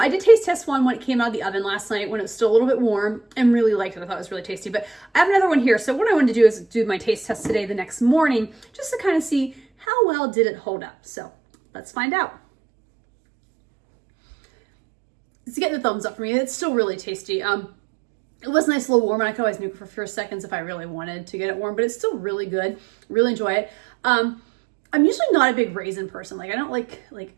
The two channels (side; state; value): left; drops out; at 9.9 s